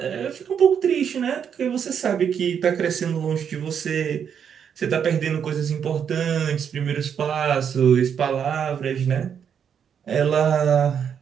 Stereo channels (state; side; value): quieter; left; 7.8 dB